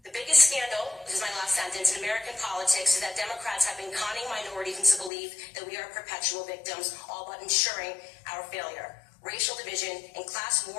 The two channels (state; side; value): drops out; right; at 5.1 s